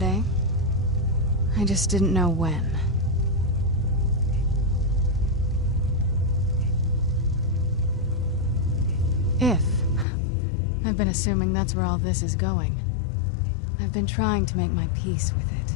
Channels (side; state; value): right; drops out; at 10.1 s